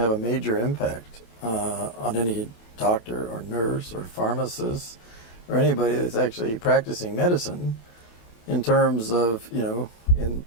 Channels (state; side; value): late; right; 28 ms